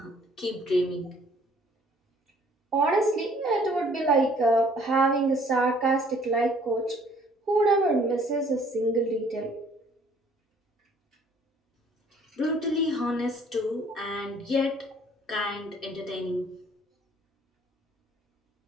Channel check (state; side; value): normal; both; correlation 0.58